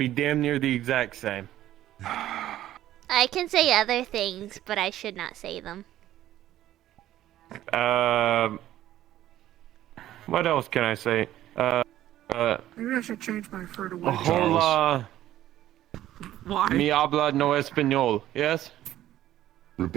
damn near the exact same. I can say other things, but I should not say them. What else can I say? Maybe I should change my fur to white. Hola. Why? Mi habla no español. Yes?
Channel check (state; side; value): quieter; left; 13.3 dB